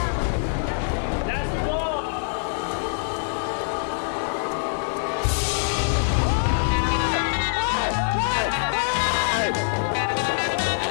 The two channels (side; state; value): right; silent; digital silence